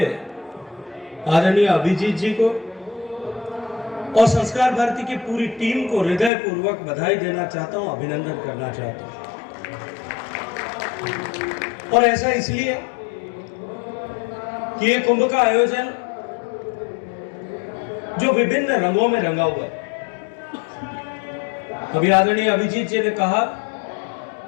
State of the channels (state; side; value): drops out; right; at 6.3 s